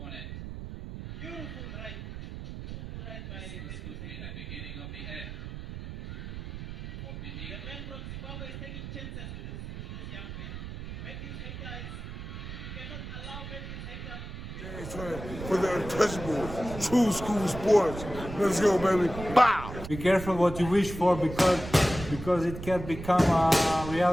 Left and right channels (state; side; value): noise; right; rumble, 9 dB below the sound